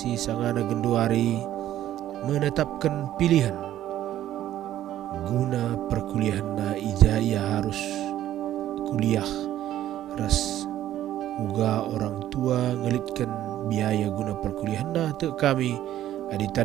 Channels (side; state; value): left; quieter; 12.7 dB